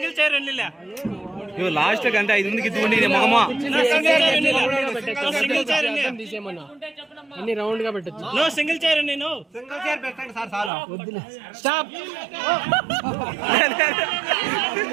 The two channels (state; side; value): drops out; left; at 10.7 s